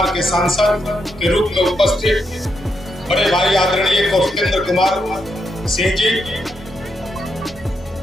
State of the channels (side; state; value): both; normal; correlation 0.81